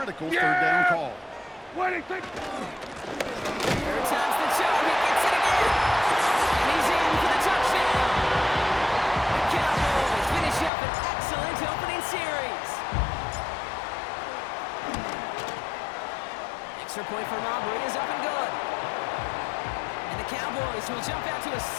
3rd down call. 3rd time's the charm. He gets it again. And he's in for the touchdown. The Cowboys finish up an excellent point from Aubrey is up and good. And the Cowboys will jump out to a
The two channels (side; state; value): right; drops out; at 10.7 s